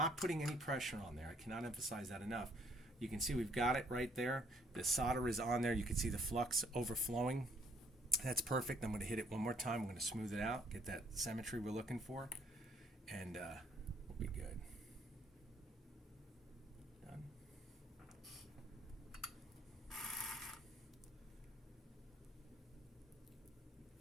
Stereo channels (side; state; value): both; normal; correlation 0.65